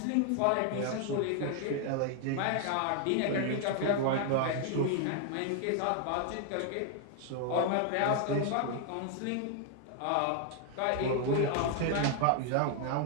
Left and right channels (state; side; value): different; both; correlation 0.00